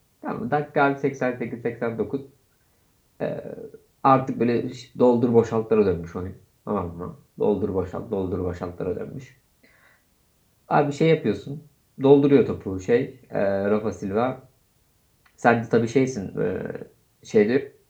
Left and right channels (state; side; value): identical; both; correlation 1.00